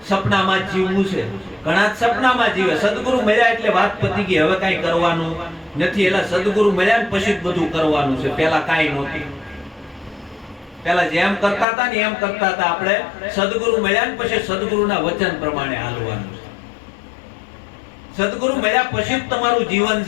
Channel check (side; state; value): right; drops out; at 11.7 s